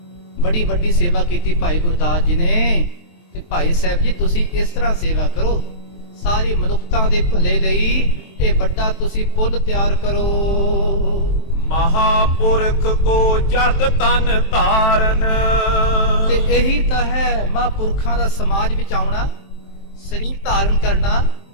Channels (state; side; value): late; right; 23 ms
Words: ਬੜੀ ਵੱਡੀ ਸੇਵਾ ਕੀਤੀ ਭਾਈ ਗੁਰਦਾਸ ਜੀ ਨੇ, ਤੇ ਭਾਈ ਸਾਹਿਬ ਜੀ ਤੁਸੀਂ ਇਸ ਤਰ੍ਹਾਂ ਸੇਵਾ ਕਰੋ, ਸਾਰੀ ਮਨੁੱਖਤਾ ਦੇ ਭਲੇ ਲਈ ਇਹ ਵੱਡਾ ਤੁਸੀਂ ਪੁੱਲ ਤਿਆਰ ਕਰੋ। ਮਹਾਪੁਰਖ ਕੋ ਜਗ ਤਨ ਧਾਰਨ, ਤੇ ਇਹੀ ਤਾਂ ਹੈ ਮਹਾਂਪੁਰਖਾਂ ਦਾ ਸਮਾਜ ਵਿੱਚ ਆਉਣਾ, ਸਰੀਰ ਧਾਰਨ ਕਰਨਾ,